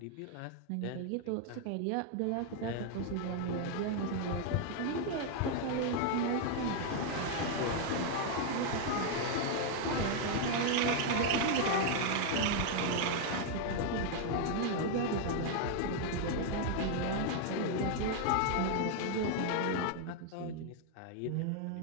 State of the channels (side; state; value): both; different; correlation 0.00